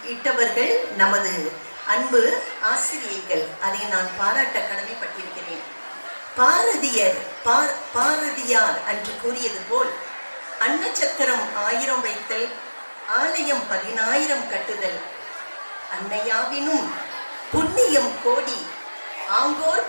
இட்டவர்கள் நமது அன்பு ஆசிரியர்கள். அதை நான் பாராட்ட கடமைப்பட்டிருக்கிறேன். பாரதியார் அன்று கூறியது போல் அன்னச்சத்திரம் 1000 வைத்தல், ஆலயம் 10,000 கட்டுதல், அன்னையாவினும் புண்ணியம் கோடி,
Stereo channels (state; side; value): inverted; both; correlation -1.00